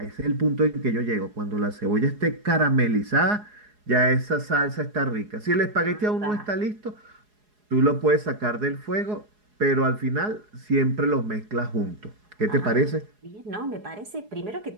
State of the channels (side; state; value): left; late; 4.8 ms